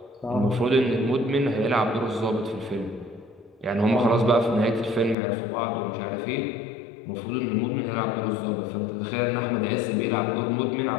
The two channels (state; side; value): drops out; right; at 5.2 s